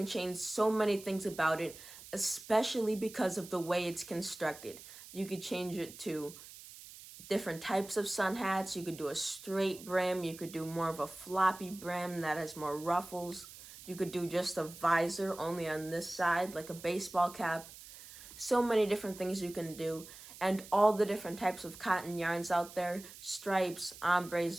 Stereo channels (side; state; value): right; noise; hiss, 16 dB below the sound